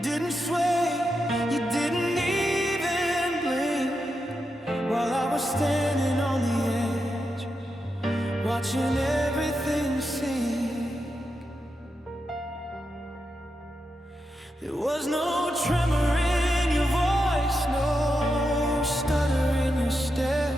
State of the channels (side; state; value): both; normal; correlation 0.87